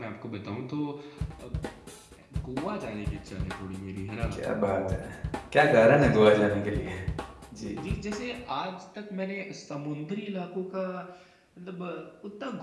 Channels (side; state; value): both; identical; correlation 1.00